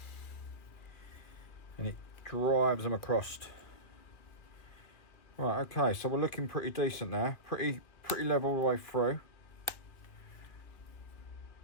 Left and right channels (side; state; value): right; late; 2.3 ms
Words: and it drives them across. Right, okay, so we're looking pretty decent now, pretty level all the way through,